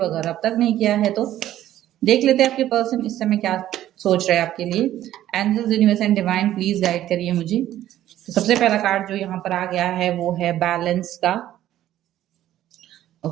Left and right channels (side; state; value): left; quieter; 12.9 dB